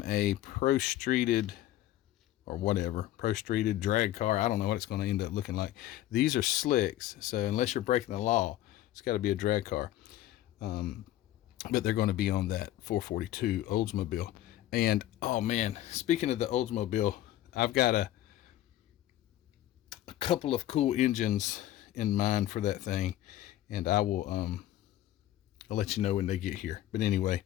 a pro-streeted or whatever, pro-streeted drag car. I don't know what it's going to end up looking like. These are slicks, so unless you're breaking the law, it's got to be a drag car. But they're going to be on that 442 Oldsmobile. And oh man, speaking of the Oldsmobile, I've got a couple of cool engines in mind for that thing, and I'll let you know when they get here. But anyway,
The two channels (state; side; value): quieter; right; 13.8 dB